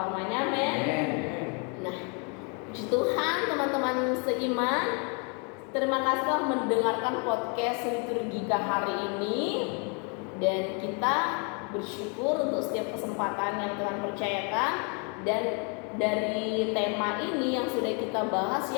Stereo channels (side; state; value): right; quieter; 35.7 dB